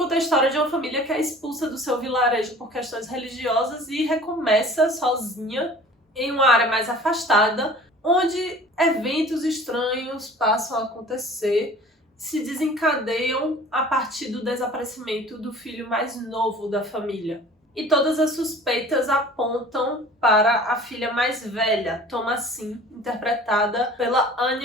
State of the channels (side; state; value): both; normal; correlation 0.45